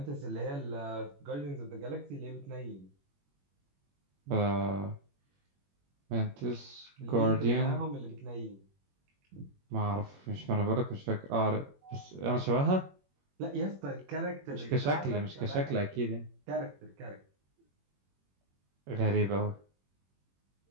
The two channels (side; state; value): left; late; 21 ms